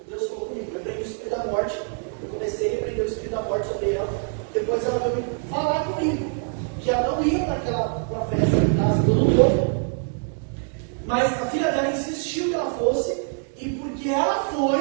Deus falou comigo: repreende o Espírito da morte. Eu comecei a repreender o Espírito da morte sobre ela. Depois ela veio falar comigo que ela não ia para a festa em casa do novo. Mas a filha dela insistiu que ela fosse. E porque ela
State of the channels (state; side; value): silent; left; 55 dB below the other